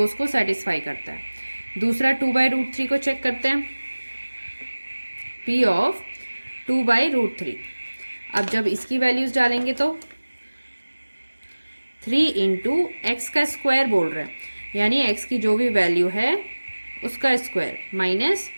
को सेटिस्फाई करता है। दूसरा 2/√3 को चेक करते हैं। p ऑफ 2/√3, अब जब इसकी वैल्यूज डालेंगे तो 3 × x का स्क्वायर बोल रहे हैं, यानी x की जो भी वैल्यू है उसका स्क्वायर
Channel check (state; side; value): inverted; both; correlation -1.00